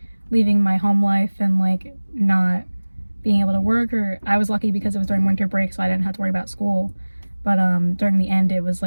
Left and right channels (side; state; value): both; inverted; correlation -1.00